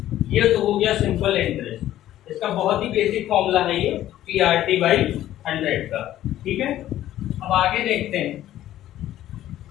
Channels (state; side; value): quieter; right; 13.2 dB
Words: ये तो हो गया सिंपल इंटरेस्ट। इसका बहुत ही बेसिक फॉर्मूला है ये PRT/100 का, ठीक है। अब आगे देखते हैं,